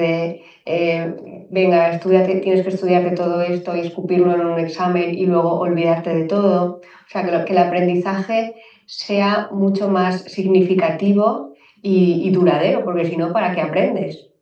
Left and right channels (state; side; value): identical; both; correlation 1.00